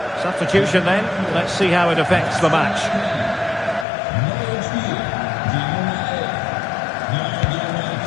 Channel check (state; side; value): drops out; right; at 3.9 s